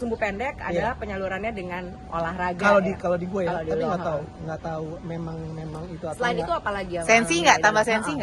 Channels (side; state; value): both; identical; correlation 1.00